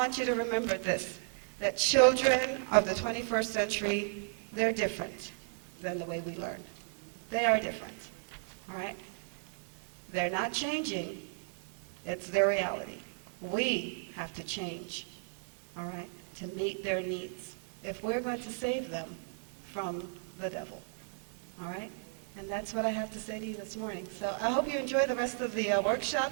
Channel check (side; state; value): left; silent; digital silence